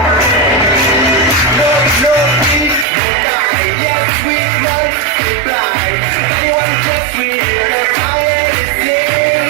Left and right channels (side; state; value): left; drops out; at 2.9 s